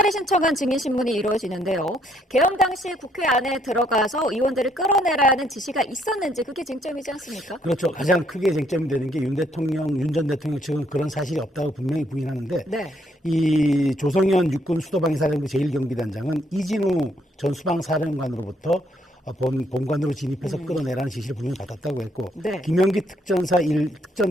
신청한 증인신문이 이루어지는데요. 개헌 당시 국회 안에 들어가서 의원들을 끌어내라는 지시가 있었는지 그게 쟁점이지 않습니까? 그렇죠. 가장 크게 쟁점이 되는 게 윤 전 대통령 측은 그런 사실이 없다고 분명히 부인하는데 네. 이 조성현 육군 수도방위사령부 제1경비단장은 이진우 전 수방사령관으로부터 본관으로 진입해서 끌어내라는 지시를 분명히 받았다고 했고 네. 김영기 특전사 1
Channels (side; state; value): both; normal; correlation 0.70